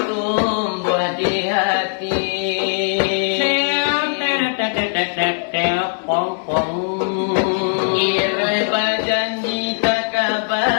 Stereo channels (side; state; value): right; silent; digital silence